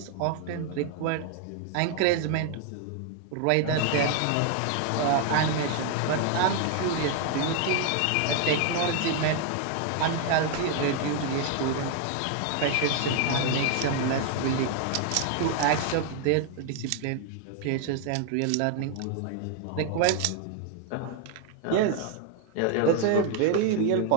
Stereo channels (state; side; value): different; both; correlation 0.00